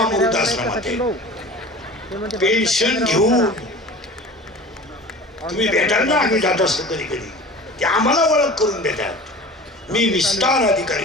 वृद्धाश्रमात आहे. पेन्शन घेऊन तुम्ही भेटाल ना, आम्ही जात असतो कधी कधी, ते आम्हाला ओळख करून देतात. मी विस्तार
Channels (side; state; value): both; normal; correlation 0.39